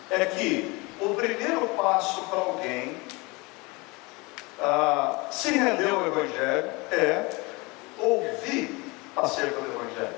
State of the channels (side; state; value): right; quieter; 25.7 dB